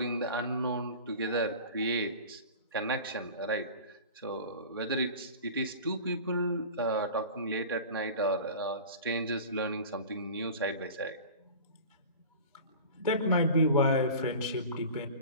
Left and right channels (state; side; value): inverted; both; correlation -0.37